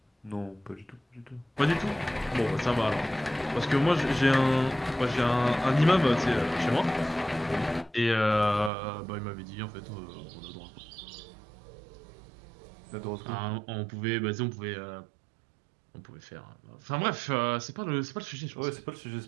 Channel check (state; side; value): drops out; left; at 8.7 s